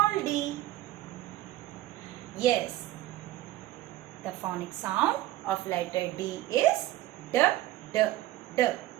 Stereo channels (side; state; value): left; quieter; 15.4 dB